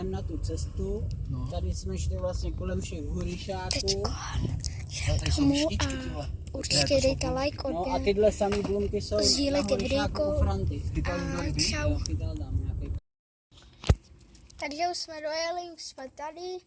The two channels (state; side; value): identical; both; correlation 1.00